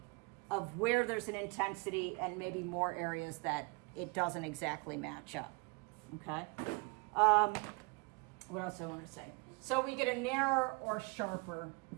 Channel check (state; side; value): quieter; left; 28.8 dB